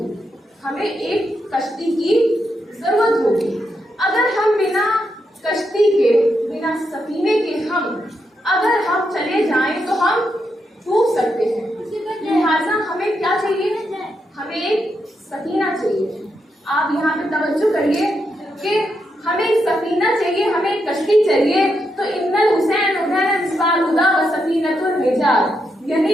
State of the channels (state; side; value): normal; both; correlation 0.83